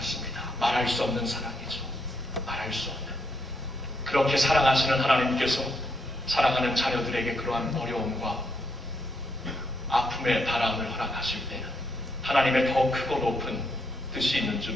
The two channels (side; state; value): both; normal; correlation 0.77